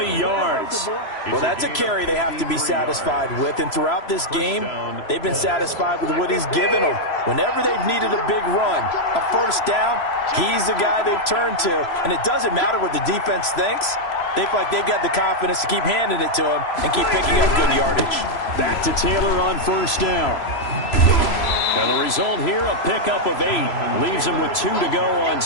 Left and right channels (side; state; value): right; late; 3.0 ms